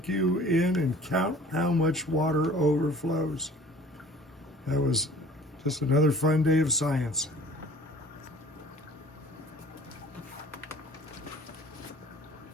you in and count how much water overflows. That was just another fun day of science.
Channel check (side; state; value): both; normal; correlation 0.49